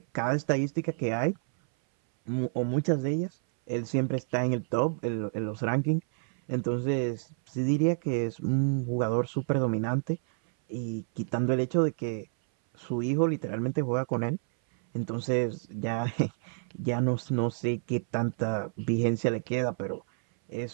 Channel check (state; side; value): silent; left; 58 dB below the other